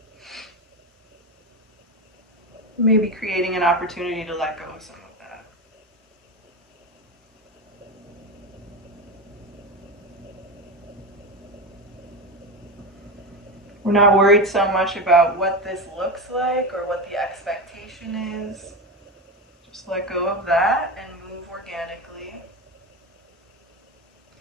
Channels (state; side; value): normal; both; correlation 0.20